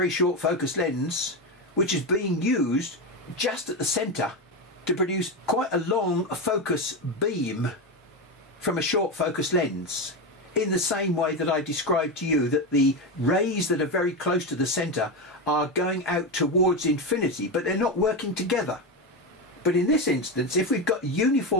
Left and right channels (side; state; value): both; normal; correlation 0.14